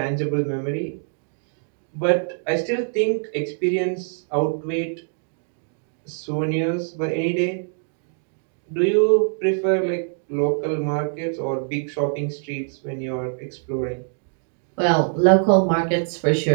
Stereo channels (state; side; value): silent; left; digital silence